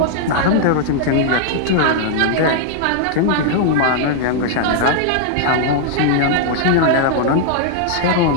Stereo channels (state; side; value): different; both; correlation -0.01